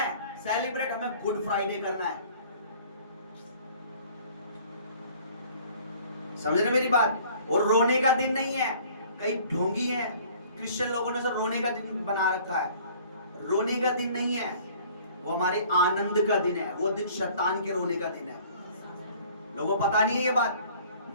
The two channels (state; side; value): inverted; both; correlation -0.52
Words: सेलिब्रेट हमें गुड फ्राइडे करना है। समझ रहे मेरी बात? और रोने का दिन नहीं है। कई ढोंगी हैं क्रिश्चियन लोगों ने, रोने का दिन बना रखा है। रोने का दिन नहीं है, वो हमारे आनंद का दिन है। वो दिन शैतान के रोने का दिन है। लोगों को पता नहीं है ये बात।